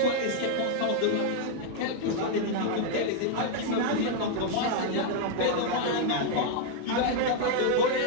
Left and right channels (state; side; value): different; both; correlation 0.00